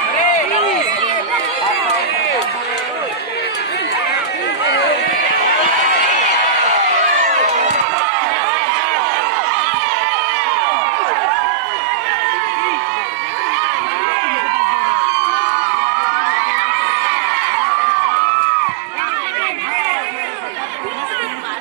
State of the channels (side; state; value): left; drops out; at 7.9 s